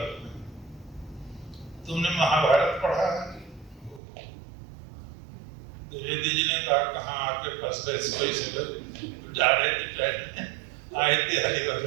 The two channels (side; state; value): left; drops out; at 4.0 s